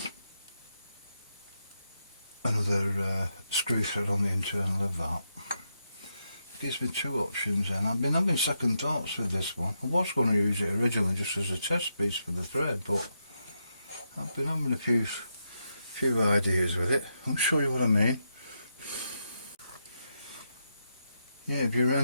another screw thread on the internal of that. It gives me two options then. I've been having second thoughts with this one. I was going to use it originally just as a test piece for the thread, but I've been having a few ideas with it. I'll show you what I mean. Yeah, if you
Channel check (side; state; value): both; inverted; correlation -0.83